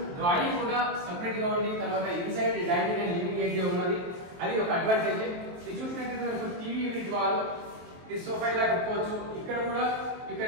drawing కూడా separate గా ఉంది. తర్వాత inside dining and living area ఉన్నది. అది ఒక అడ్వాంటేజ్. ఇది చూసినట్లయితే మనకు టీవీ యూనిట్ వాల్, ఇది సోఫా ఇలా పెట్టుకోవచ్చు. ఇక్కడ కూడా you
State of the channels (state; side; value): late; left; 23 ms